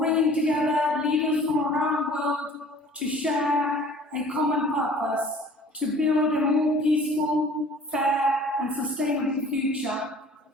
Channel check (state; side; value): normal; both; correlation 0.49